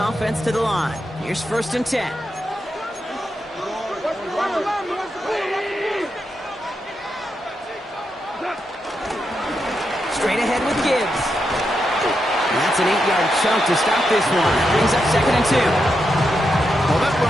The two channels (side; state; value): both; normal; correlation 0.85